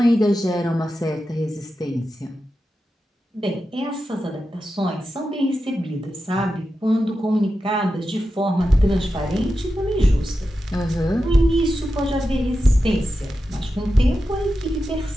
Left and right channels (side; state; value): both; normal; correlation 0.90